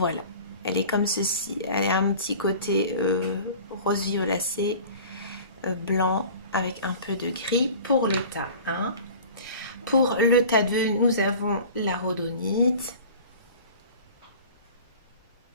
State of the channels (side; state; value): both; inverted; correlation -0.41